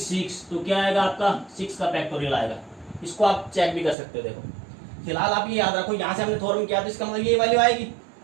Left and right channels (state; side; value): drops out; left; at 4.0 s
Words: तो क्या आएगा आपका, 6 का फैक्टोरियल आएगा। इसको आप चेक भी कर सकते हो। देखो फिलहाल आप ये याद रखो, यहाँ से हमने थ्योरम किया तो इसका मतलब ये वैल्यू आएगी।